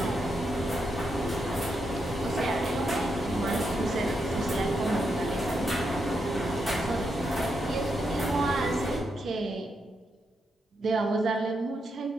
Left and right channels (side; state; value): both; normal; correlation 0.82